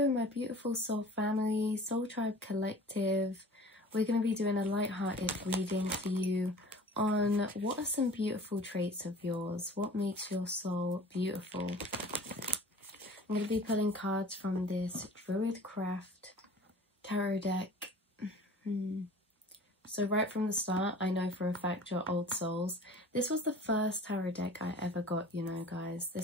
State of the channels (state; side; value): normal; both; correlation 0.44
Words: my beautiful soul family, Soul Tribe Collective. We're going to be doing a light-hearted reading for you on what are some beautiful traits of yours? What makes your soul beautiful? I'm going to be pulling cards from this Druidcraft tarot deck. So right from the start, I know for a fact you're old souls. This was the first tarot deck I ever got, you know, guys.